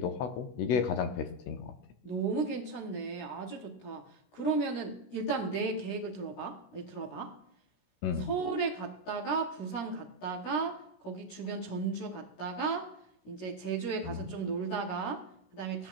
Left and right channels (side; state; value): right; late; 16 ms